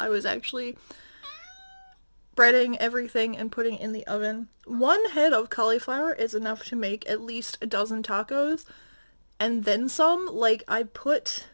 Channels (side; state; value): both; inverted; correlation -1.00